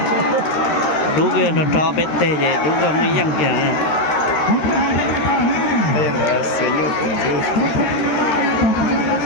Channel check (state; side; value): late; right; 13 ms